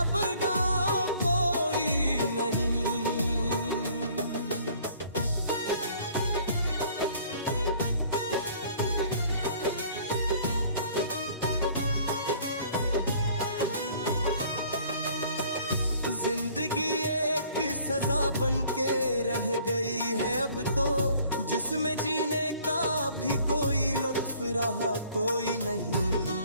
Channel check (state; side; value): inverted; both; correlation -0.55